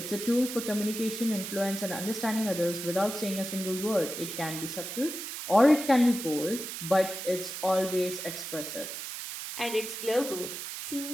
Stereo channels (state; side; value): noise; right; hiss, 7 dB below the sound